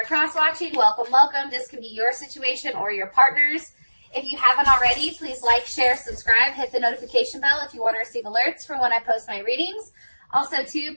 cross-watching, welcome, welcome. This could be your situation or your partner's. If you haven't already, please like, share, subscribe, hit the notification bell if you want to receive alerts for when I post my readings. Also, too,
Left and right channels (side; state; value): both; inverted; correlation -1.00